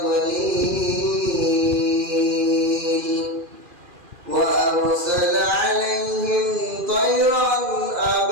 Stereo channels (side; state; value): left; late; 2.4 ms